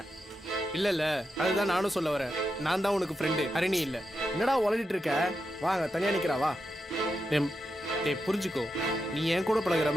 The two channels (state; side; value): normal; both; correlation 0.87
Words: இல்லை அதுதான் நானும் சொல்ல வரேன். நான் தான் உனக்கு ஃப்ரெண்டு, ஹரிணி இல்லை. என்னடா உளறிட்டு இருக்க? வாங்க தனியாக நிற்கிறா வா. டேய் புரிஞ்சுக்கோ, நீ என் கூட பழகுற